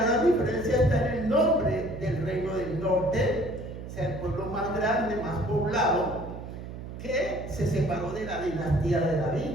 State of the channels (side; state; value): right; noise; hum, 10 dB below the sound